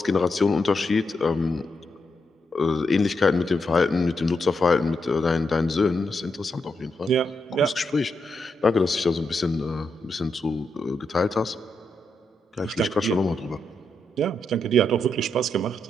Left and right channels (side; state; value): both; normal; correlation 0.82